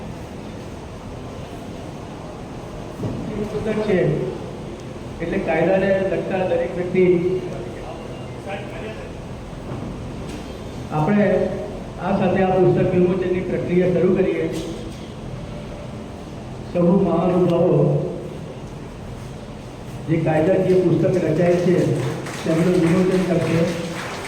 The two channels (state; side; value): identical; both; correlation 1.00